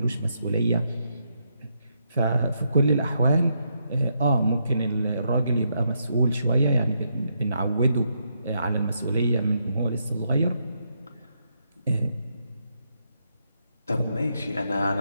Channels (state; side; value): inverted; both; correlation -0.79